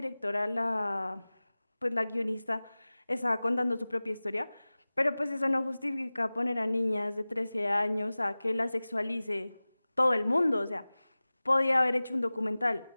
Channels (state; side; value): inverted; both; correlation -0.98